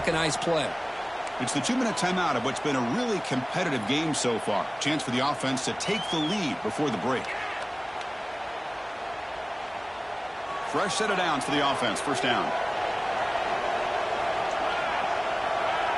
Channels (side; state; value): both; identical; correlation 1.00